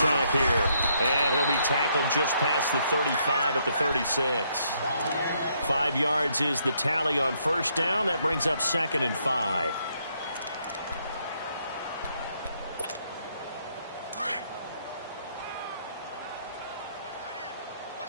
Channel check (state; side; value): inverted; both; correlation -0.72